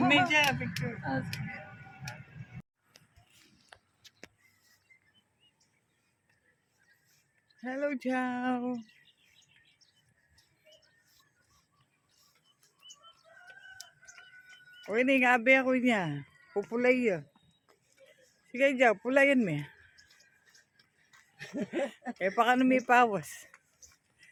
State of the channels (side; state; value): both; identical; correlation 1.00